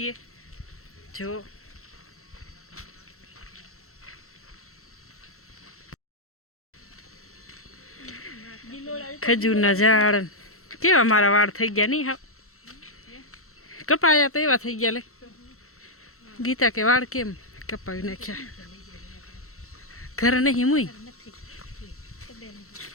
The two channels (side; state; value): right; late; 0.63 ms